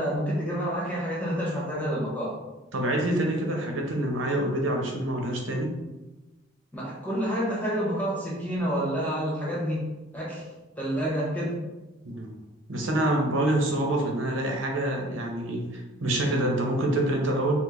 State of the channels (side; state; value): both; normal; correlation 0.50